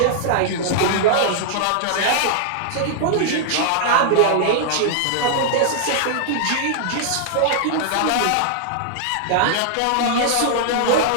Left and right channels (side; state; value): both; different; correlation -0.01